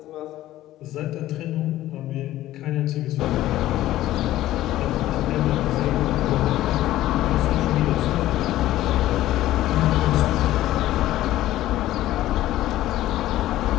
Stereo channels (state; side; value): quieter; right; 14.6 dB